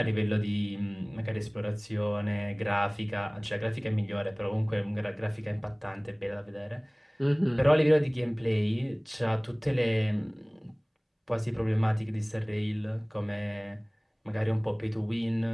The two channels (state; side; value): identical; both; correlation 1.00